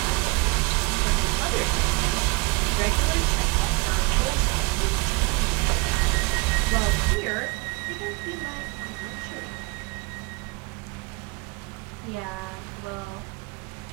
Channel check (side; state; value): left; quieter; 27.3 dB